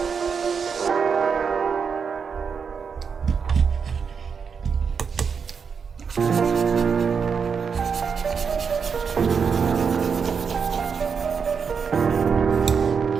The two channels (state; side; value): quieter; left; 6.1 dB